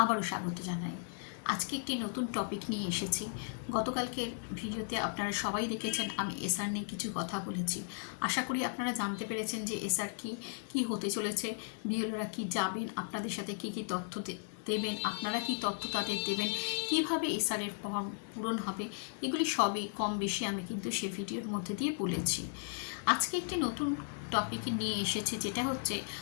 আবারও স্বাগত জানাই। আজকে একটি নতুন টপিক নিয়ে এসেছি। গতকালকের ভিডিওতে আপনারা সবাই দেখেছেন আমি এসআর নিয়ে কিছু কথা বলেছি। আশা করি আপনারা জানতে পেরেছেন যে এসআর কি হতে চলেছে, বিএলওরা কি যাবেন, আপনাদের সাথে কি তথ্য দেবেন, আপনারা কি তথ্য তাদের দেবেন, কিভাবে এসআরের ফর্ম পূরণ হবে, এগুলি সবই কম বেশি আমি কিন্তু সে ভিডিওর মধ্যে দিয়ে বলেছি। আজকে একটি নতুন টপিক নিয়ে এসেছে, যেটা হচ্ছে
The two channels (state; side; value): silent; right; 54 dB below the other